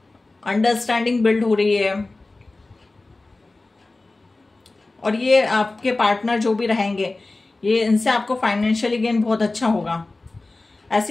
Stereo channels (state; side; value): quieter; right; 3.2 dB